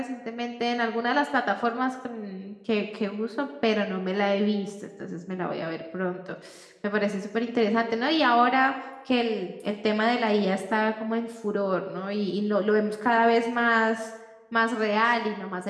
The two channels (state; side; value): identical; both; correlation 1.00